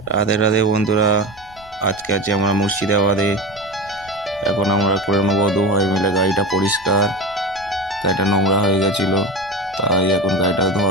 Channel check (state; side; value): noise; left; rumble, 26 dB below the sound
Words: রাধে রাধে বন্ধুরা, আজকে আছি আমরা মুর্শিদাবাদে। এখন আমরা করে নেবো দু ভাই মিলে গাড়িটা পরিষ্কার। গাড়িটা নোংরা হয়ে গেছিলো, তাই এখন গাড়িটা